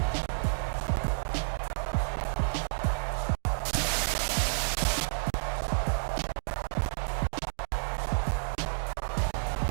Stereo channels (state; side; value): silent; left; 58 dB below the other